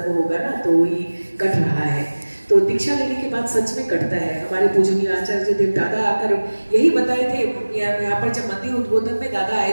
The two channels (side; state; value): both; inverted; correlation -1.00